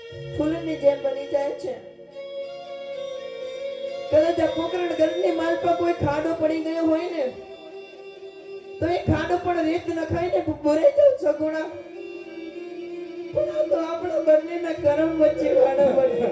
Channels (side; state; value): both; identical; correlation 1.00